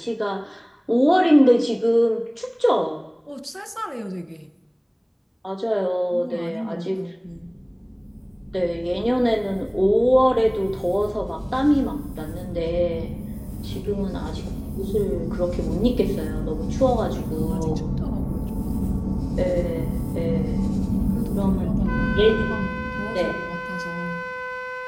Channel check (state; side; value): identical; both; correlation 1.00